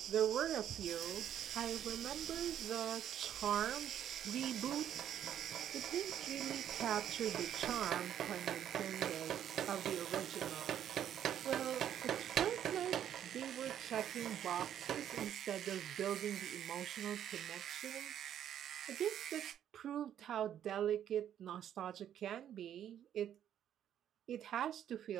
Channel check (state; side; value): quieter; left; 10.2 dB